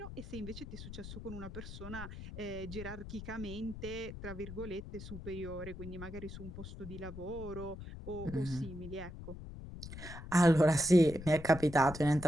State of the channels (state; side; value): noise; left; rumble, 11 dB below the sound